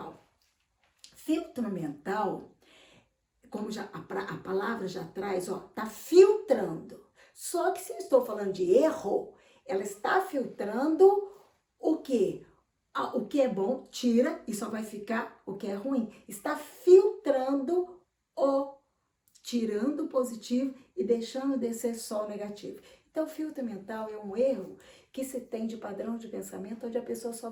Filtro mental, como a palavra já traz, tá filtrando. Só que se eu estou falando de erro, ela está filtrando o quê? O que é bom, tira e só vai ficar o que é ruim. Está filtrando tirando o positivo e deixando descer só o negativo. Então, o filtro mental é um erro que se tem de padrão de pensamento, onde a pessoa só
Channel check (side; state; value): both; identical; correlation 1.00